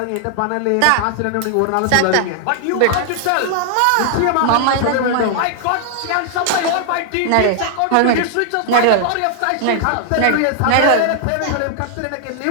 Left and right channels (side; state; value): both; different; correlation 0.00